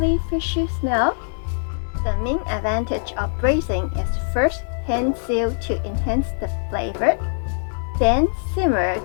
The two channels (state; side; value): silent; right; digital silence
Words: fishy smell. The main advantage of braising is first hand sear to enhance the flavor, then simmer